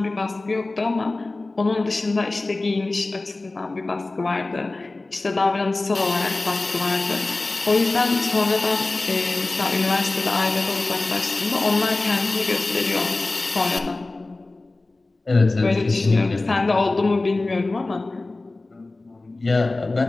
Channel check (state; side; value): quieter; right; 3.2 dB